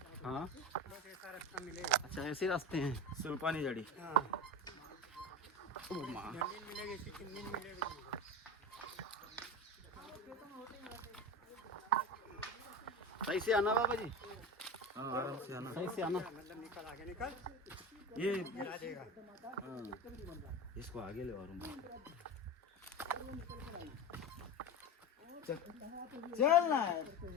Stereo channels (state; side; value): normal; both; correlation 0.25